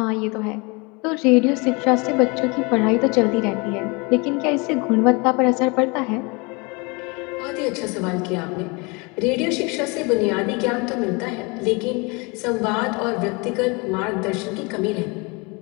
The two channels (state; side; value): quieter; right; 28.6 dB